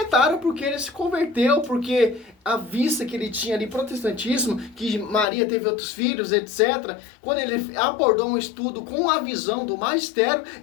porque ele se converteu, porque a vista que ele tinha ali, protestantismo, que Maria teve outros filhos, etc. Quando ele abordou um estudo com a visão do magistério,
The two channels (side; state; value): right; drops out; at 5.2 s